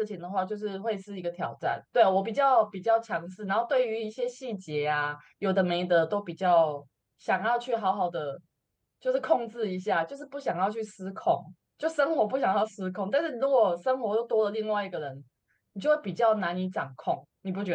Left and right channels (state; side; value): identical; both; correlation 1.00